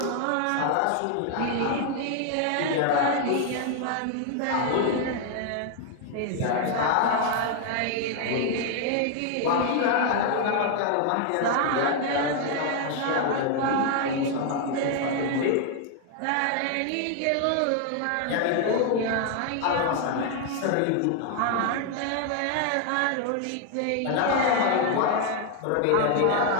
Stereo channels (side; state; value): both; different; correlation 0.00